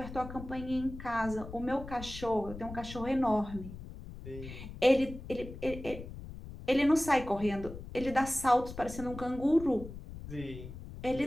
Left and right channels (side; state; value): left; noise; rumble, 12 dB below the sound